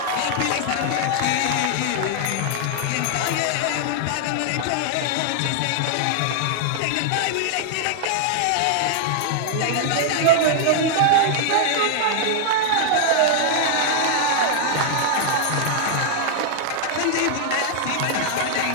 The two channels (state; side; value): different; both; correlation -0.01